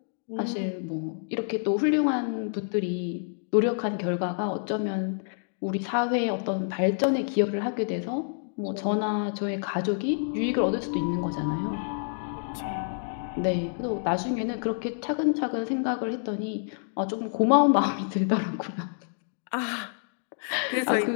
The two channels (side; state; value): right; silent; digital silence